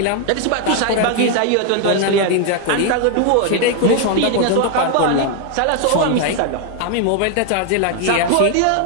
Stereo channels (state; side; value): different; both; correlation 0.01